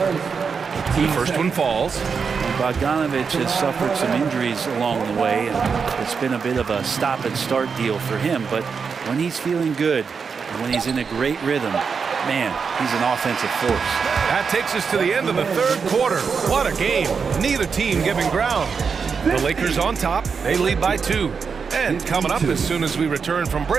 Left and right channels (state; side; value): quieter; left; 5.7 dB